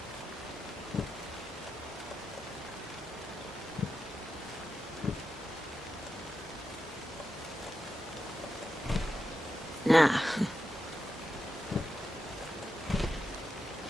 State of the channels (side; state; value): both; normal; correlation 0.88